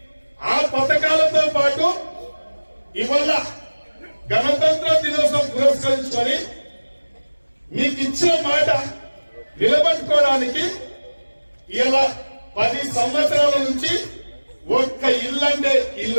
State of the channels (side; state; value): both; inverted; correlation -1.00